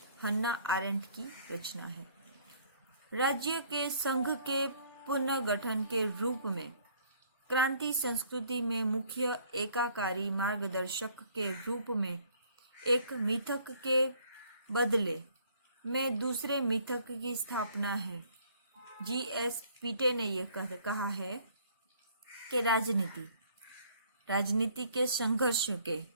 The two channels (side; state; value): both; inverted; correlation -0.60